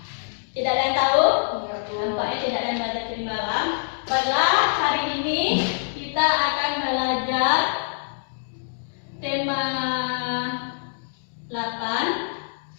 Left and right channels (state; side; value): silent; right; digital silence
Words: Tidak ada yang tahu? Nampaknya tidak ada yang belajar tadi malam. Baiklah, hari ini kita akan belajar tema 8,